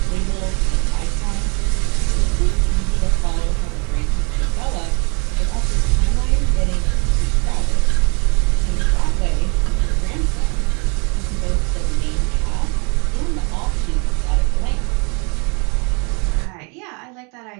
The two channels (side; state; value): left; quieter; 32.9 dB